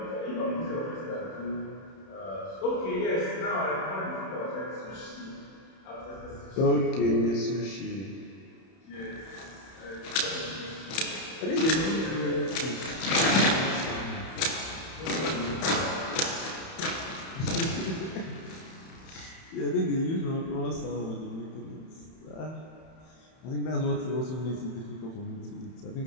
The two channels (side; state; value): right; late; 31 ms